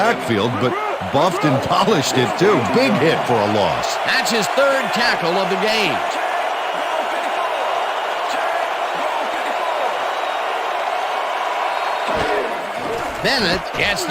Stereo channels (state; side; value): identical; both; correlation 1.00